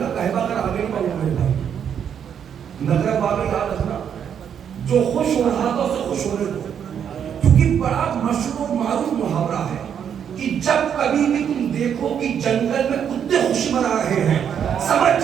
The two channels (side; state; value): left; quieter; 8.3 dB